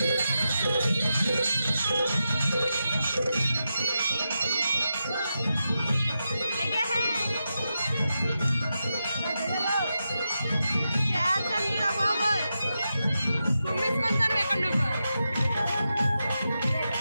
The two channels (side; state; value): both; inverted; correlation -0.88